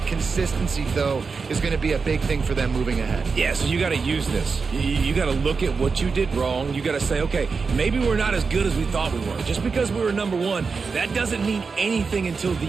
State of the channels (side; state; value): left; quieter; 4.9 dB